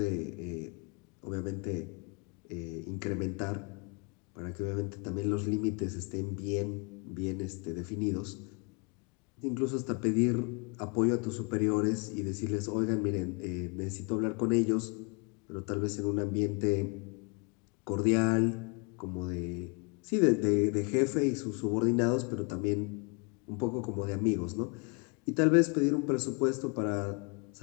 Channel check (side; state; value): right; quieter; 33.6 dB